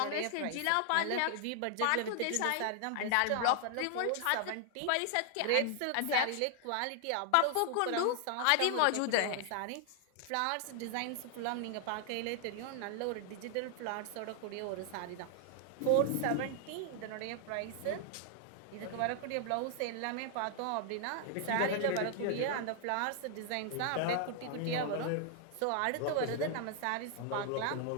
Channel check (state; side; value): different; both; correlation 0.00